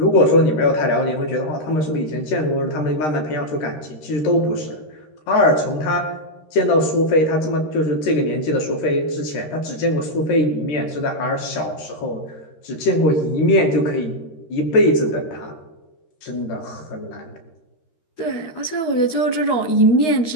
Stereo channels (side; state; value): right; late; 13 ms